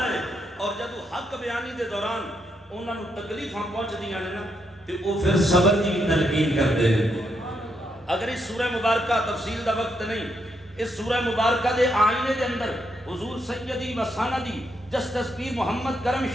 ہے. اور جدو حق بیانی دے دوران انہاں نو تکلیفاں پہنچدیاں نے نا تے او پھر صبر دی تلقین کردے ہیں. اگر اس سورہ مبارکہ تفصیل دا وقت نہیں, اس سورہ مبارکہ دے آئینے دے اندر حضور سیدی و سندی جسٹس پیر محمد کرم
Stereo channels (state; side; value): normal; both; correlation 0.79